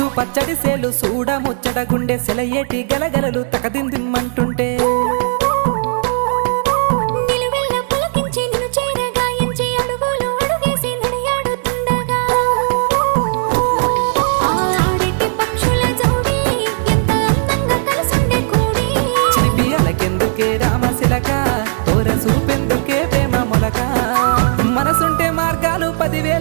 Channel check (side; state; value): left; silent; 68 dB below the other